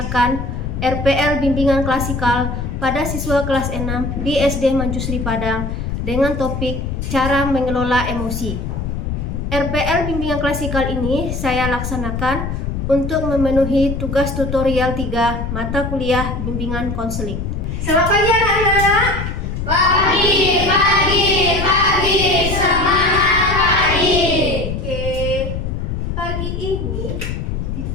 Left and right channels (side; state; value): left; noise; rumble, 4 dB below the sound